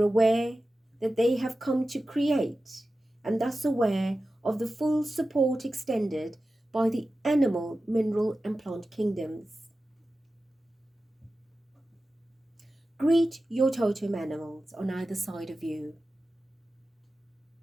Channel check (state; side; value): normal; both; correlation 0.94